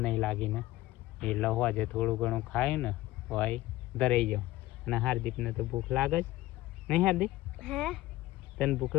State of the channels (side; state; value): right; quieter; 16.7 dB